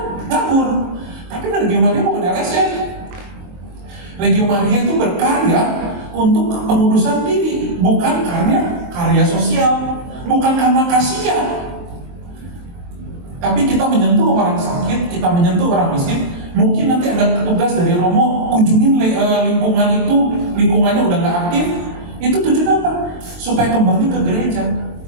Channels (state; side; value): late; left; 23 ms